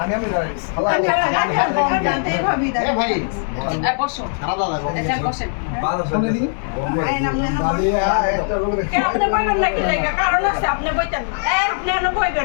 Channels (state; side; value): silent; right; digital silence